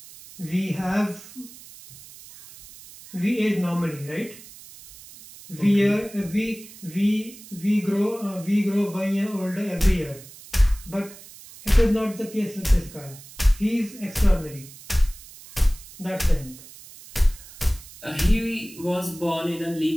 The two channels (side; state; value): right; noise; hiss, 18 dB below the sound